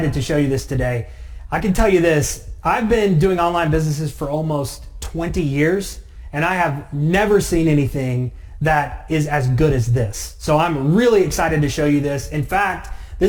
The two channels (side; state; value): both; identical; correlation 1.00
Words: to show you this today. I can tell you this, I've been doing online businesses for almost 20 years, and I have never seen anything that is as good as this. So I'm really excited to show you this. In fact,